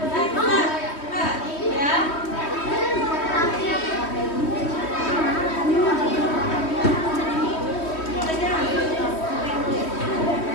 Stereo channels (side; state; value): right; late; 3.1 ms